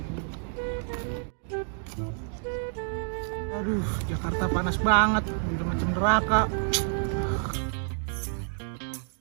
Aduh, Jakarta panas banget, udah macam neraka.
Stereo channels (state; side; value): silent; left; 59 dB below the other